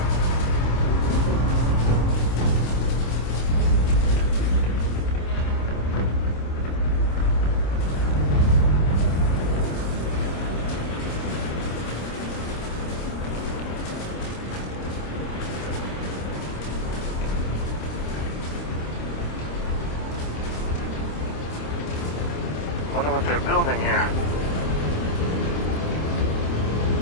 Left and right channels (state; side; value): late; right; 26 ms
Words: Wonder what they're building here.